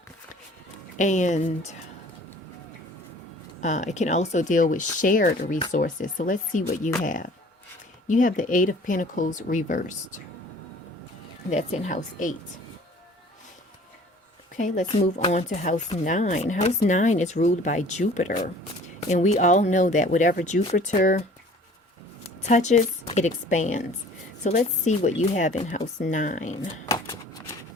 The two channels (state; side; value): normal; both; correlation 0.50